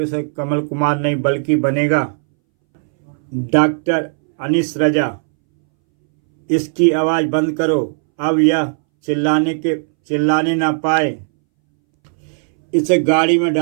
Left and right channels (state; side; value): silent; left; 65 dB below the other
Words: कमल कुमार नहीं बल्कि बनेगा डॉक्टर अनीस रजा। इसकी आवाज़ बंद करो, अब यह चिल्लाने ना पाए। इसे गाड़ी में